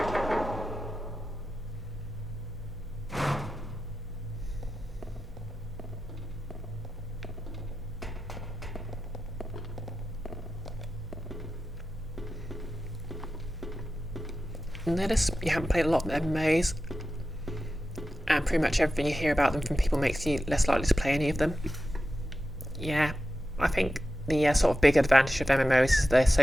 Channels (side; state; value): both; normal; correlation 0.92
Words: Notice you haven't played a lot of MMOs, and pretty much everything you hear about them from people makes you less likely to play any of them. Yeah, I think the sort of big advantage of MMOs is their